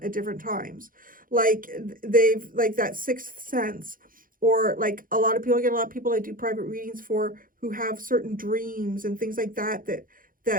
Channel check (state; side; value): late; left; 0.40 ms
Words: at different times. Like they've, like that sixth sense, or like a lot of people I do private readings for who have certain dreams and things like that